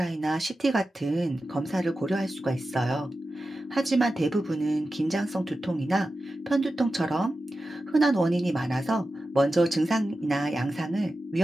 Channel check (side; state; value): both; normal; correlation 0.92